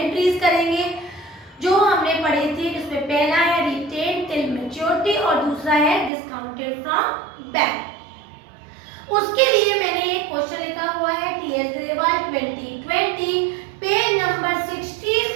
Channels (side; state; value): left; drops out; at 6.1 s